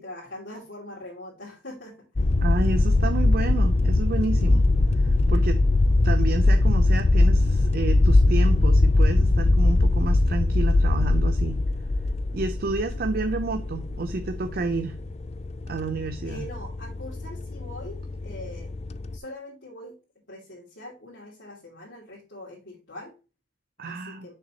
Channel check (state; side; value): normal; both; correlation 0.91